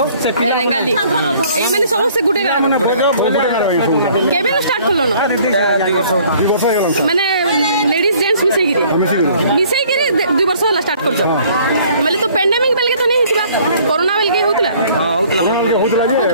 ରେଙ୍ଗାଲି ଏଇ ମାନେ ସମସ୍ତେ ଗୋଟେ ଗାଁ କେବେ ଷ୍ଟାର୍ଟ କଲନ ମାନେ ଲେଡିଜ ଜେଣ୍ଟସ ମିଶେଇକିରି 2 ବର୍ଷ ହେଲା ଷ୍ଟାର୍ଟ କରୁଛ ମାନେ ତ ପେଣ୍ଡେମିକ ବେଲକେ ତ नहीं हितला कोरोना बेलके होतला हां होतला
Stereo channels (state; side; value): inverted; both; correlation -0.57